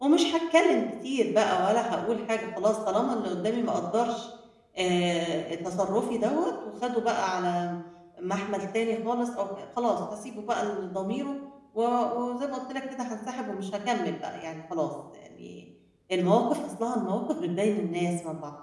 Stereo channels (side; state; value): both; identical; correlation 1.00